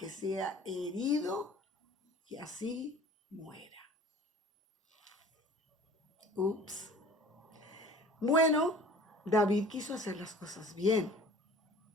sea herido y así muera. Ups. Bueno, David quiso hacer las cosas bien.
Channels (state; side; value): normal; both; correlation 0.46